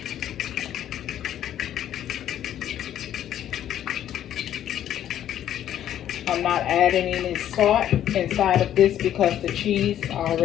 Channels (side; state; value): right; quieter; 11.1 dB